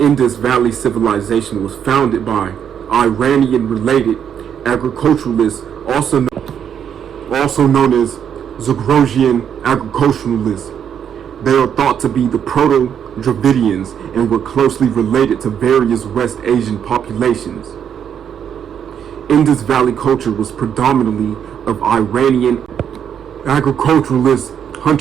Valley civilization was founded by Iranian-related agriculturalists, also known as Zagrogian agriculturalists. They are thought to be the Proto-Dravidians and were closely related to various West Asian populations. Indus Valley culture was predominantly of Iranian agriculturalist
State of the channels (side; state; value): left; quieter; 8.5 dB